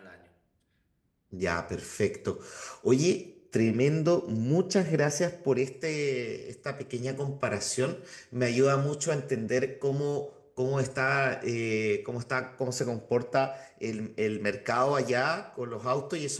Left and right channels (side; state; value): both; identical; correlation 1.00